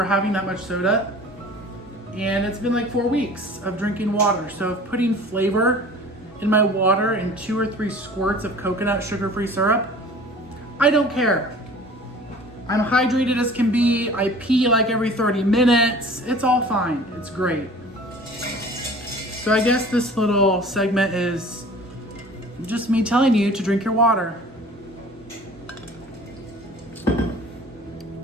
having that much soda. And it's been like 4 weeks of drinking water. So if putting flavor in my water and 2 or 3 squirts of coconut sugar-free syrup, I don't care. I'm hydrated as can be. I pee like every 30 minutes. It's all fine. It's great. So I guess this little segment is just me telling you to drink your water.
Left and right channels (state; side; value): normal; both; correlation 0.45